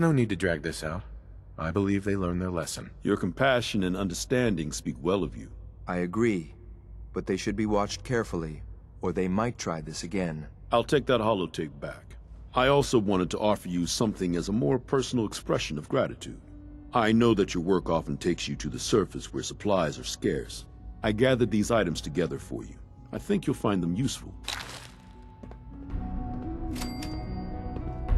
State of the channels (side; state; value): both; identical; correlation 1.00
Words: no need to drag this out. I believe they learned their lesson. Your compassion and understanding speak well of you. I agree, but they should be watched carefully, or they might try this again. I'll take that holotape back. I also wanted to offer you something as a more personal expression of gratitude. I know that your work often takes you to the surface where supplies are scarce. I gathered these items together for you. I think you'll find them useful.